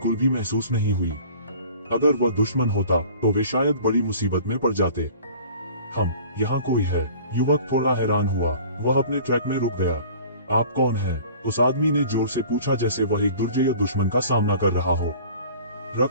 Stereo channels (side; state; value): both; inverted; correlation -0.45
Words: भी महसूस नहीं हुई। अगर वह दुश्मन होता तो वे शायद बड़ी मुसीबत में पड़ जाते। हम यहाँ कोई है? युवक थोड़ा हैरान हुआ। वह अपने ट्रैक में रुक गया। आप कौन हैं? उस आदमी ने जोर से पूछा, जैसे वह एक दुर्जय दुश्मन का सामना कर रहा हो।